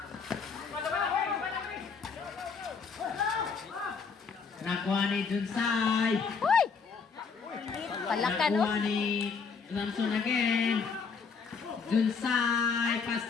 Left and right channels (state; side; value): quieter; right; 5.4 dB